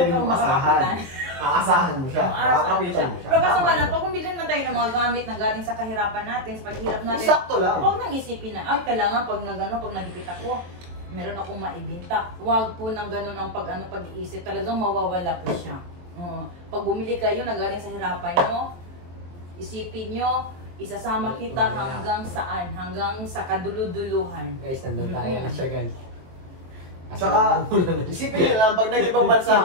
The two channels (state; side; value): late; left; 23 ms